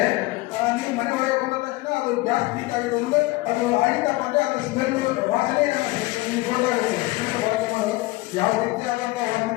ನೀವು ಮನೆ ಒಳಗೆ ಹೋದ ತಕ್ಷಣ ಅದು ಗ್ಯಾಸ್ ಲೀಕ್ ಆಗಿದೆ ಅಂದರೆ ಅದು ಆಗಿದ್ದಪ್ಪ ಅಂದರೆ ಅದು ಸ್ಮೆಲ್ ವಾಸನೆ ಗೊತ್ತಾಗುತ್ತೆ. ಯಾವ ರೀತಿಯಾದಂಥ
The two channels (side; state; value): right; quieter; 20.9 dB